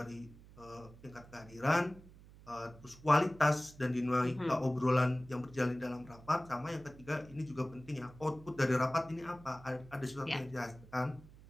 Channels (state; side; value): noise; right; hum, 20 dB below the sound